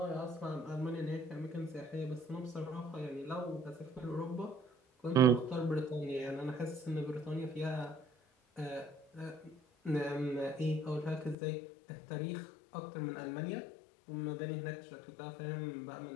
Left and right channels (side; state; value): right; drops out; at 11.4 s